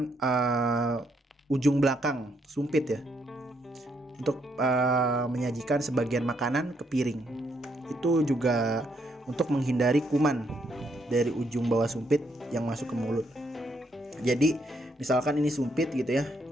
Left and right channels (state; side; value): normal; both; correlation 0.75